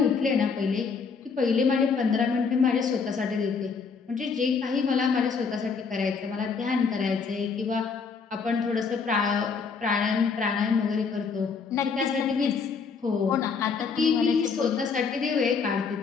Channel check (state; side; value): quieter; right; 5.4 dB